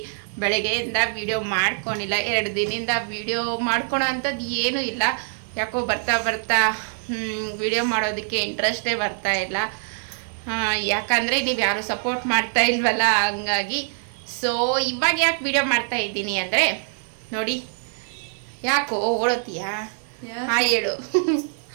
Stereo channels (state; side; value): silent; left; 63 dB below the other